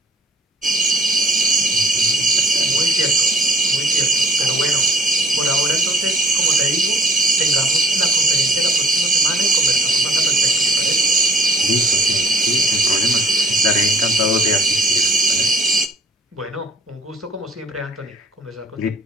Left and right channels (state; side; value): normal; both; correlation 0.51